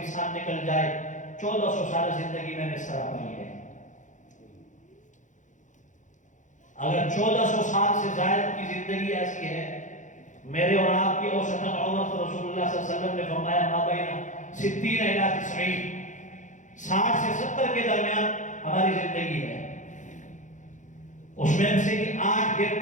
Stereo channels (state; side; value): late; right; 0.36 ms